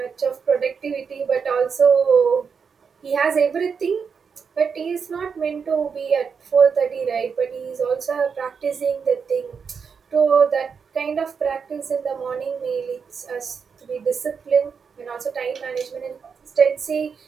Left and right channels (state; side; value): quieter; left; 6.0 dB